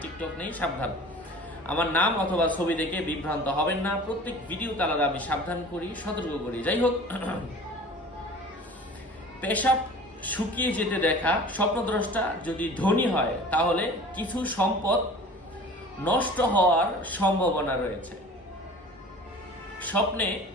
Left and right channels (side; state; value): both; normal; correlation 0.42